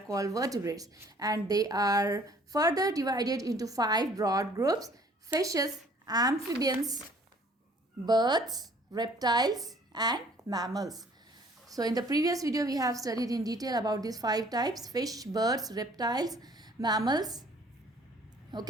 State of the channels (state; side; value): normal; both; correlation 0.56